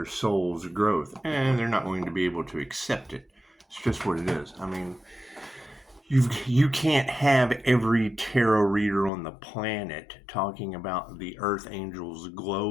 soul's growth, and they're not going to be able to accept it. It's just what it is. I mean, you can't have every tarot reader on the planet talking about the earth angels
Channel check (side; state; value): right; drops out; at 9.1 s